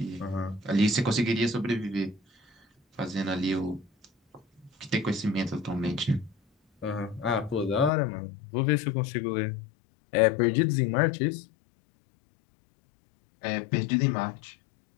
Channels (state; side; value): drops out; right; at 7.9 s